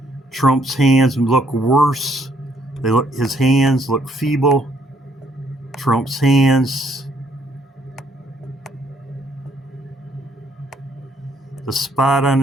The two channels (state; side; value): normal; both; correlation 0.69